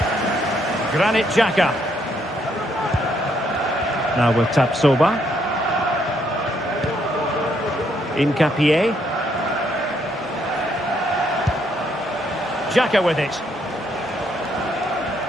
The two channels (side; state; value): both; normal; correlation 0.72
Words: Granit Xhaka. Now with Tapsoba. Incapié. Xhaka with it.